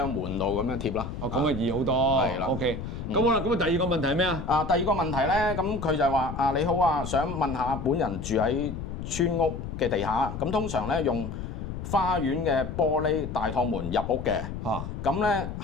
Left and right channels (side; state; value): left; noise; rumble, 7 dB below the sound